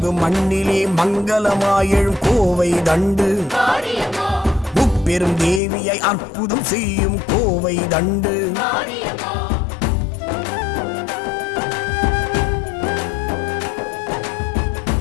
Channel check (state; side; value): drops out; right; at 5.6 s